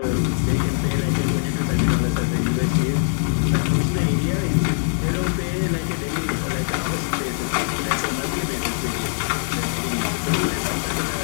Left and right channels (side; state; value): right; silent; digital silence